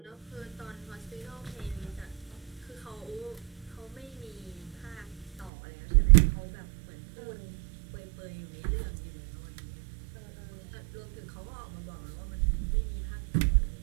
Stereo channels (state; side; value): drops out; left; at 5.5 s